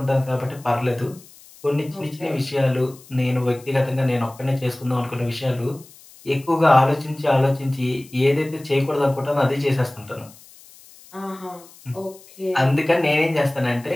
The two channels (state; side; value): noise; left; hiss, 23 dB below the sound